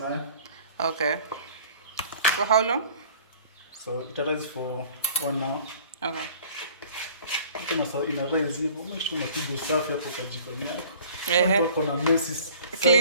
Okay. For how long? So, it rice for 1 hour. Okay. Tuna sawa ina rice hivyo. Make sure unapiga usafi hapo kwa jikoni yako. Yeah. Kuna messes.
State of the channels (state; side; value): inverted; both; correlation -0.50